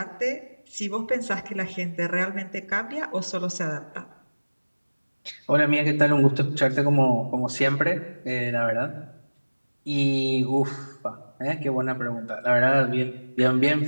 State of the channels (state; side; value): inverted; both; correlation -1.00